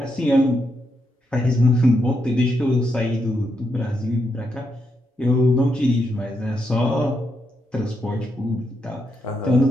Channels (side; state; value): both; normal; correlation 0.81